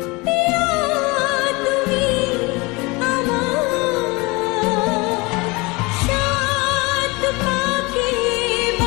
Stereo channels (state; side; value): quieter; right; 25.4 dB